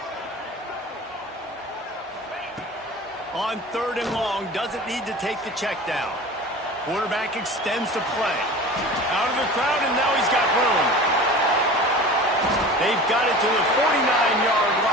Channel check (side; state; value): both; normal; correlation 0.37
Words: On 3rd and long, doesn't need to take the check down. Quarterback extends the play. Out of the crowd, and now he's got room. They've got it to the 49-yard